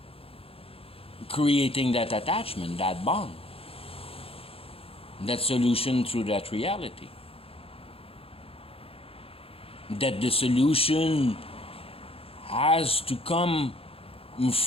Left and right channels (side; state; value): right; late; 0.27 ms